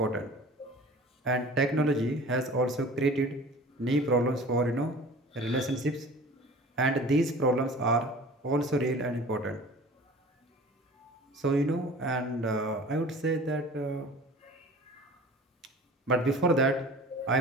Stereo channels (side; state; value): both; normal; correlation 0.43